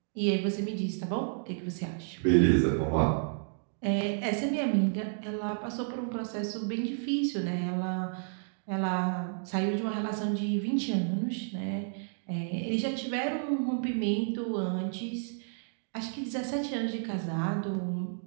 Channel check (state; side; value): silent; left; digital silence